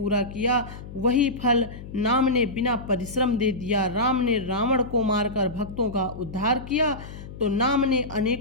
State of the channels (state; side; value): noise; left; hum, 13 dB below the sound